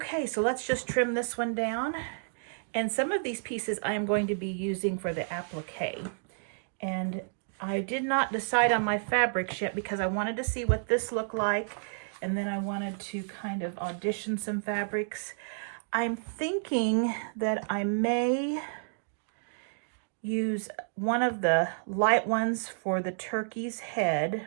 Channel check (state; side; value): silent; left; digital silence